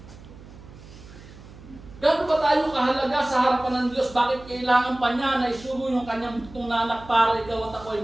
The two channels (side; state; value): right; noise; hum, 19 dB below the sound